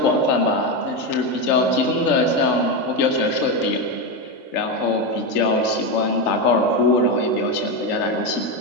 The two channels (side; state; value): right; late; 3.8 ms